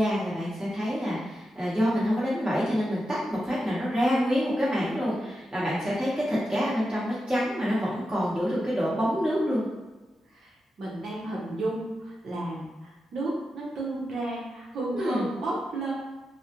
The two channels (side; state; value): both; normal; correlation 0.89